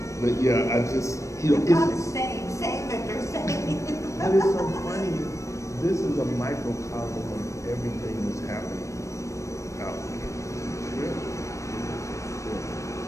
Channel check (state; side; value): late; right; 0.15 ms